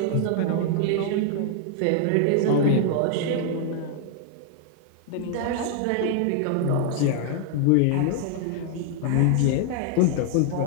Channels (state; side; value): different; both; correlation 0.00